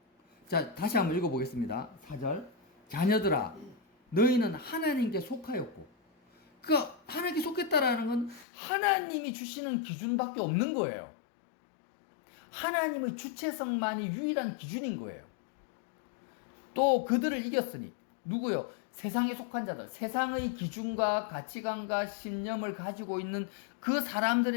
자, 다시 한번 읽어보겠습니다. 4절. 자녀들아, 너희는 하나님께 속하였고, 그러니까 하나님께 속했다라는 건 하나님이 주시는 기준밖에 없는 거예요. 하나님의 주체성만이 유일한 기준인 거예요. 또 그들을 이겼으니, 누구요? 세상에 속한 자들, 세상의 기준과 가치관과 신념을 가지고 있는 그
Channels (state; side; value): drops out; right; at 8.5 s